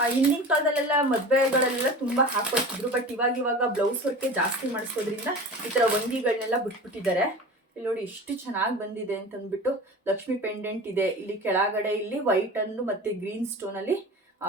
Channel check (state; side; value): normal; both; correlation 0.35